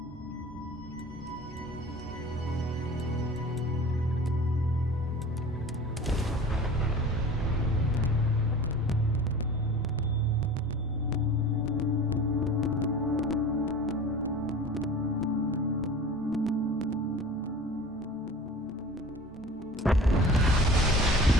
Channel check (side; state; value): both; normal; correlation 0.40